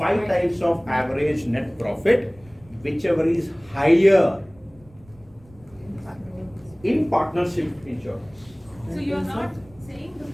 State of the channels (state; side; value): noise; right; rumble, 26 dB below the sound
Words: 5 times of average net profit, whichever is higher in partnership insurance. So you are not saying the